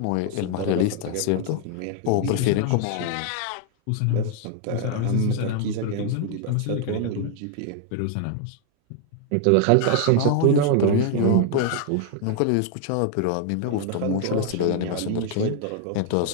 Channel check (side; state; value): both; different; correlation 0.00